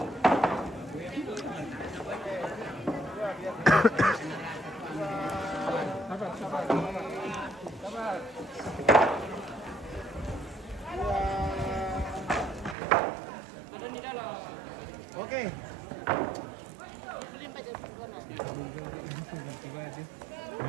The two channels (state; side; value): drops out; left; at 12.8 s